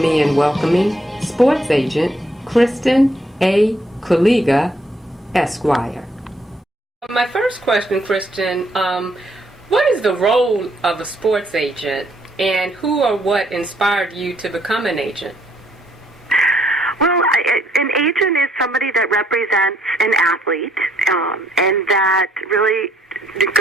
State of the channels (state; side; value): normal; both; correlation 0.69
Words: in welcoming sports agent Kristen A. Kuliga, Esquire. My first question, Kristen, what is the role of a sports agent, and who or what inspired you to become an agent? Well, an agent is somebody that represents an athlete and that really